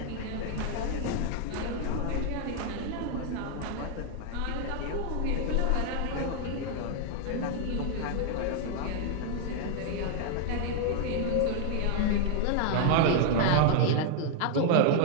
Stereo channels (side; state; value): both; different; correlation 0.00